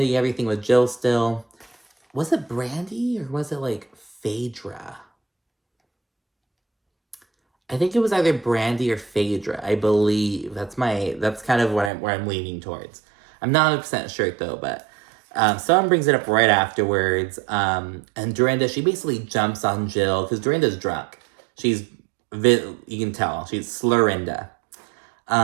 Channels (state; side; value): drops out; left; at 11.9 s